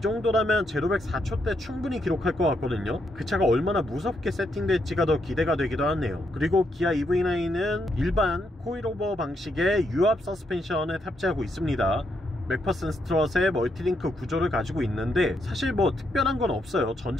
제로백 4초대 충분히 기록할 것 같거든요. 그 차가 얼마나 무섭게 세팅될지가 더 기대가 되기도 하네요. 그리고 기아 EV9은 일반 코일오버 방식의 유압 서스펜션을 탑재하고 있습니다. 맥퍼슨 스트럿의 멀티링크 구조를 가지고 있는데 사실 뭐 특별한 건 없어요.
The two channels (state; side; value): normal; both; correlation 0.78